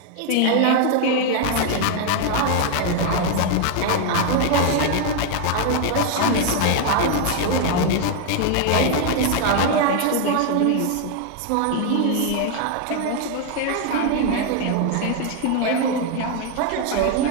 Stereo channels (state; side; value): different; both; correlation 0.01